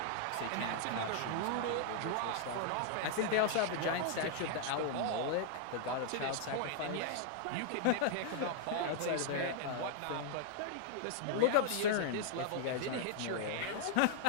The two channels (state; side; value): different; both; correlation 0.00